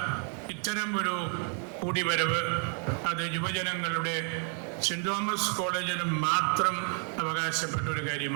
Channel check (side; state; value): left; quieter; 39.9 dB